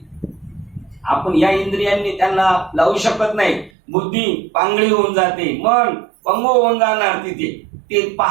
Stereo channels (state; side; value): drops out; left; at 3.7 s